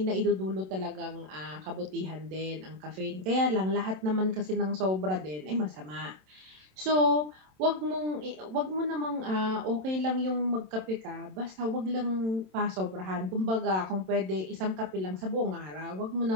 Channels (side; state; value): left; late; 27 ms